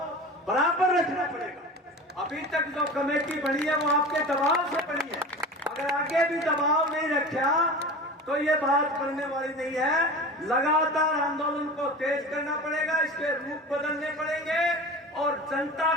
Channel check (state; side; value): normal; both; correlation 0.34